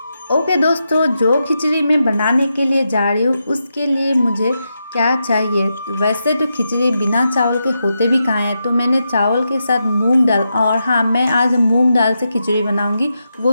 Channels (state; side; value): inverted; both; correlation -0.86